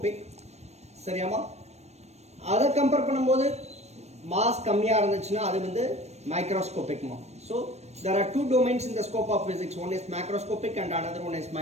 சரியாமா? அதை கம்பேர் பண்ணும்போது மாஸ் கம்மியாக இருந்துச்சுன்னா அது வந்து மைக்ரோஸ்கோபிக்மா. So there are two domains in the scope of physics. One is macroscopic and another one is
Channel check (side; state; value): left; late; 0.31 ms